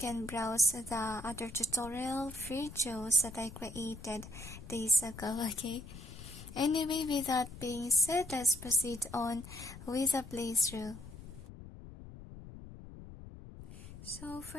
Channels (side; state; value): left; noise; rumble, 14 dB below the sound